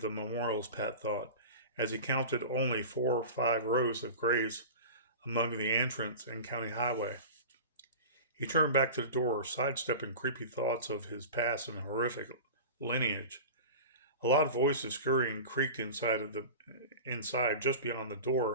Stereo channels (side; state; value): both; inverted; correlation -0.32